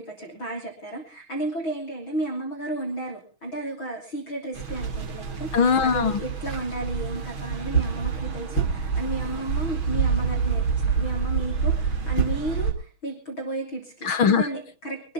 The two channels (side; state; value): right; late; 6.3 ms